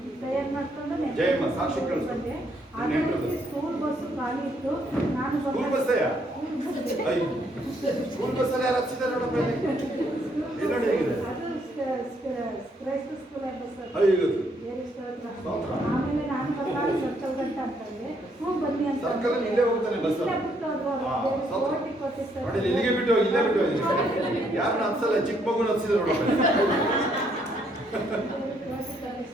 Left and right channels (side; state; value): both; normal; correlation 0.71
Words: ಜಯಮ್ಮ ಸಾಕ್ಷಿ ಕಳಿಸ್ಬೇಕು. ಸ್ಕೂಲ್ ಬಸ್ ಖಾಲಿ ಇತ್ತು. ಸ್ಕೂಲ್ ಬಸ್ ಸ್ಕೂಲ್ ಬಸ್ಸಲ್ಲಿ ಯಾರು ಹಚ್ಚಿದ್ದಾರೆ ನೋಡಪ್ಪ. ಇಲ್ಲಿ ನೋಡಿ ಹೇಗಿದೆ. ಕ್ರೈಸ್ತ ಸ್ಕೂಲ್ ಆಮೇಲೆ ನಾನು ಸರ್ಕಲ್ ಗಂಟ ಅಂತಂದ್ರೆ ಬನ್ನಿ ಅಂತ ಸರ್ಕಲ್ ಇಲ್ಲೇ ಹೋಗ್ತಾನೆ ಬಸ್. ನೋಡಿ ಇಲ್ಲಿಗೆ ಬಿಟ್ಟು ಇಲ್ಲೇ ಬಿಟ್ಟು ಯಾರನ್ನ ಹತ್ಸಲ್ಲ, ಚಿಕ್ಕ ಮಗುನ ಹಚ್ಚಿದ್ರು ನೋಡಪ್ಪ.